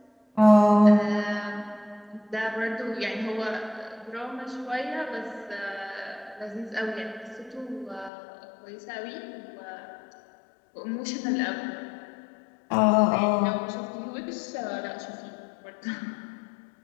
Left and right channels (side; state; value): right; drops out; at 8.1 s